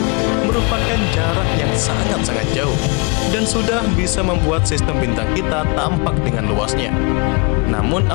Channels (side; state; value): right; quieter; 30.5 dB